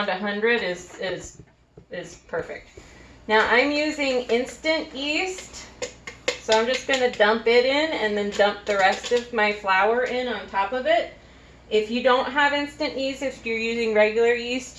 100 is perfect. Now I'm using instant yeast, so I'm just going to dump it in and then dump the rest of my flour in on top of it. If you don't have instant yeast, if you're using regular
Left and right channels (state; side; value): identical; both; correlation 1.00